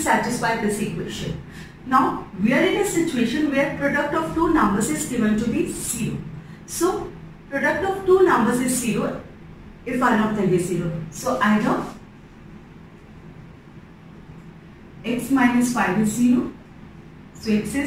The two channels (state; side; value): identical; both; correlation 1.00